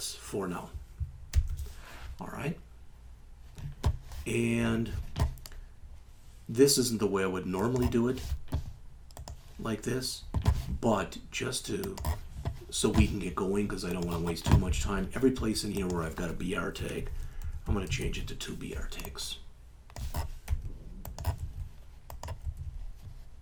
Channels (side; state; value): both; identical; correlation 1.00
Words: for now. All right. And this isn't the way I would normally do it, like this, but just so we can get going, because I don't want to waste too much time. Every place in here where I've got a BR tag, I'm going to change it to 2 BR tags.